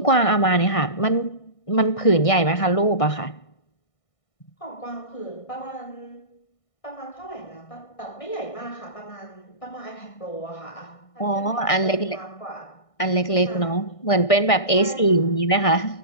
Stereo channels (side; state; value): right; late; 1.6 ms